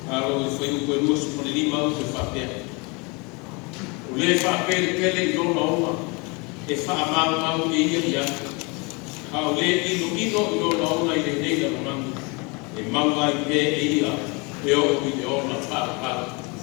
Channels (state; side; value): quieter; right; 29.5 dB